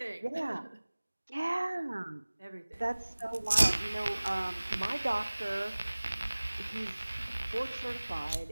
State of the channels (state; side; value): inverted; both; correlation -1.00